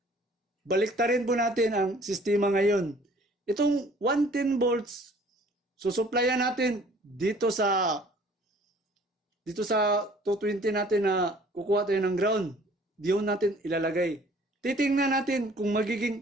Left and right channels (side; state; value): both; normal; correlation 0.54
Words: Baliktarin po natin ang sistema ngayon. Itong 110 volts, susuplayan natin dito sa 220 natin na kukuha tayo ng ground. Diyon natin ilalagay. Titingnan natin kung